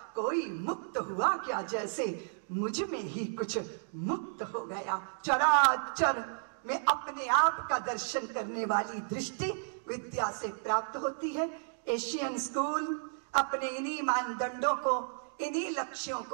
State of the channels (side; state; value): left; silent; digital silence